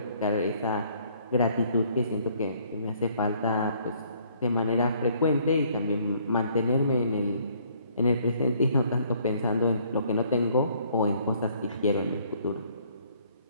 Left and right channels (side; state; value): both; inverted; correlation -0.63